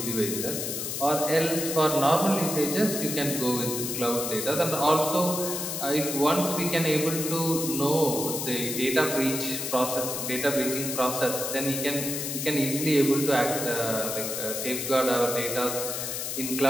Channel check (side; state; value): left; noise; hiss, 4 dB below the sound